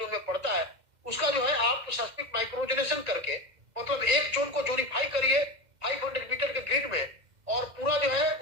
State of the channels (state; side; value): late; left; 2.1 ms